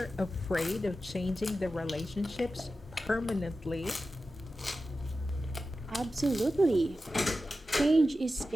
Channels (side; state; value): both; normal; correlation 0.93